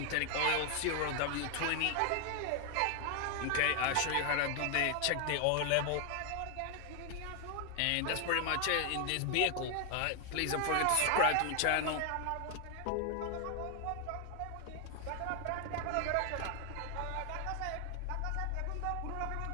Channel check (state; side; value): different; both; correlation 0.00